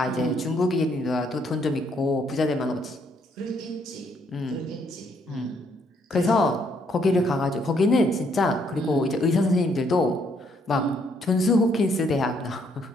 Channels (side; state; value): both; normal; correlation 0.70